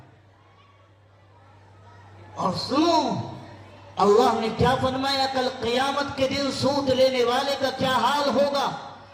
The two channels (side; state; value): both; identical; correlation 1.00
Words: اور سنو اللہ نے کیا فرمایا کل قیامت کے دن سود لینے والے کا کیا حال ہوگا.